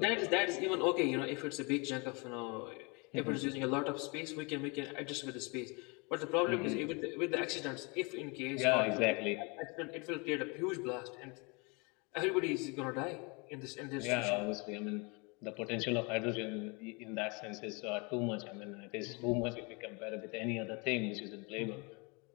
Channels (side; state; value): right; quieter; 30.2 dB